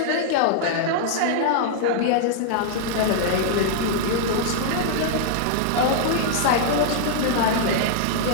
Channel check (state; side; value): different; both; correlation -0.01